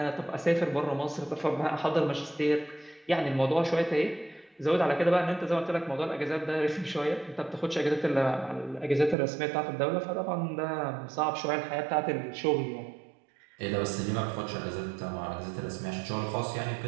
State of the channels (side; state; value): left; drops out; at 9.2 s